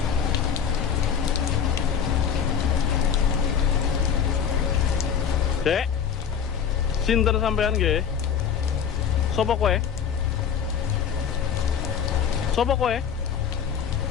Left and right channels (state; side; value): quieter; right; 7.7 dB